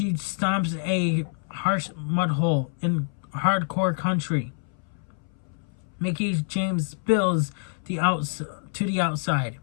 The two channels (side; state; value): right; silent; 61 dB below the other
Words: stomps a harsh mud hole in hardcore country. Mickie James spills to the outside.